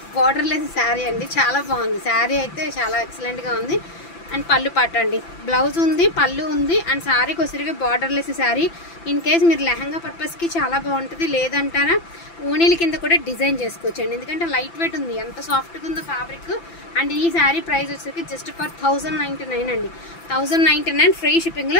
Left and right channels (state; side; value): late; right; 5.9 ms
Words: బోర్డర్ లెస్ సారీ అండి, చాలా బాగుంది। సారీ అయితే చాలా ఎక్సలెంట్ గా ఉంది। అండ్ పళ్ళు పాట అండి, బ్లౌజ్ ఉంది, పళ్ళు ఉంది, అండ్ సారీకి వచ్చరికి బార్డర్లెస్ సారీ। ఇన్ కేస్ మీరు లెహంగా పర్పస్కి చాలా బాగుంటుంది, లేదంటారా ఓనీల కింద కూడా డిజైన్ చేసుకోవచ్చండి। ఎందుకంటే లైట్ వెయిట్ ఉంది, ఎంత సాఫ్ట్గా ఉందో ఫ్యాబ్రిక్। అండ్ ఈ శారీ ప్రైస్ వచ్చరికి జస్ట్ ఫర్ 1099 అండి, 1099 ఫ్రీ